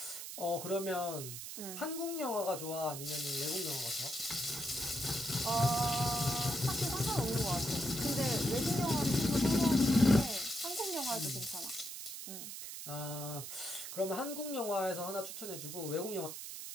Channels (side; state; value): right; noise; hiss, 8 dB below the sound